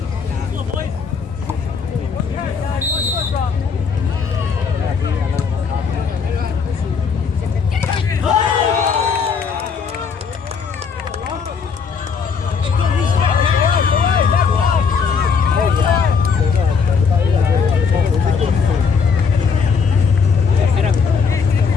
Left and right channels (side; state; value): right; quieter; 5.7 dB